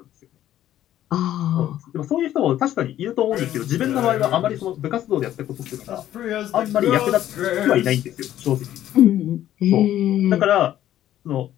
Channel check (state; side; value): quieter; right; 12.4 dB